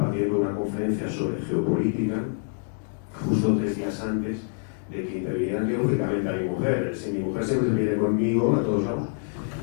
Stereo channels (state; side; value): silent; right; digital silence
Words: una conferencia sobre geopolítica, justo 3 días antes de que interviniera quirúrgicamente a mi mujer. Mi mujer siempre viene conmigo a todos lados,